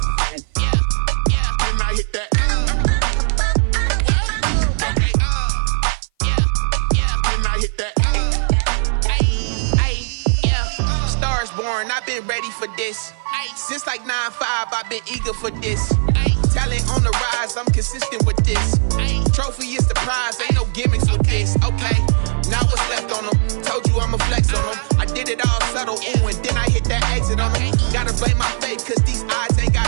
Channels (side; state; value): left; silent; 57 dB below the other